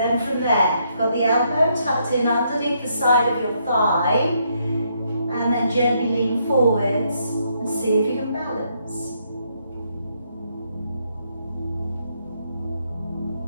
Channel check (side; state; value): both; inverted; correlation -0.74